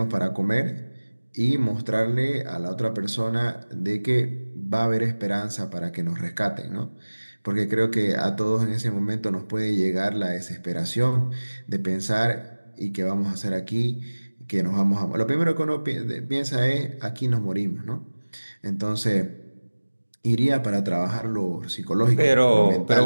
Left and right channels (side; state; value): both; inverted; correlation -1.00